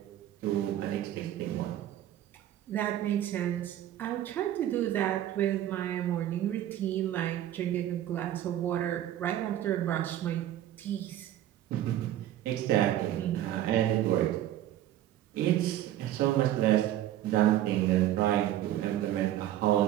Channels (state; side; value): quieter; left; 12.6 dB